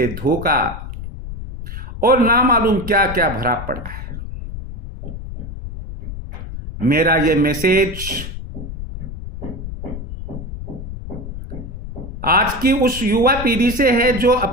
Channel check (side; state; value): left; noise; rumble, 9 dB below the sound